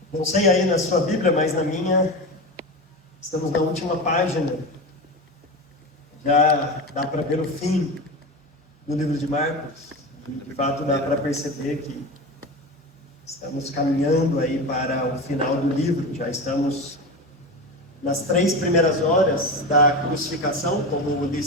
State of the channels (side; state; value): both; normal; correlation 0.24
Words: Não sei aí na sua Bíblia, mas na minha, estamos na última página. Já dá para ver o fim do livro de Marcos. De fato, dá para perceber que estamos caminhando aí para o final do livro. Já estamos nas 3 primeiras horas da crucificação, como o